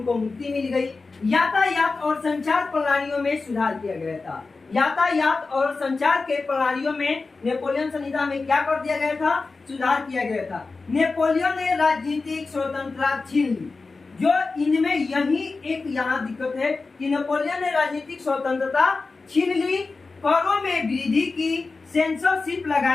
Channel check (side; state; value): right; quieter; 3.9 dB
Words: मुक्ति मिल गई। यातायात और संचार प्रणालियों में सुधार किया गया था। यातायात और संचार के प्रणालियों में नेपोलियन संहिता में क्या कर दिया गया था, सुधार किया गया था। नेपोलियन ने राजनीतिक स्वतंत्रता छीन ली। जो इनमें यही एक यहाँ दिक्कत है कि नेपोलियन ने राजनीतिक स्वतंत्रता छीन ली, करों में वृद्धि की, सेंसरशिप